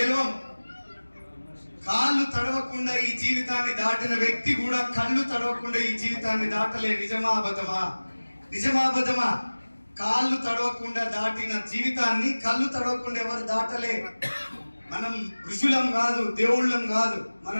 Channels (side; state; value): both; inverted; correlation -1.00